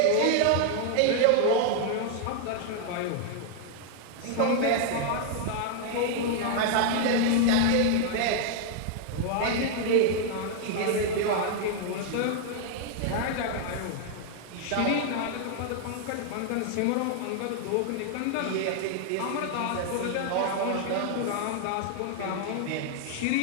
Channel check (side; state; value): both; different; correlation 0.00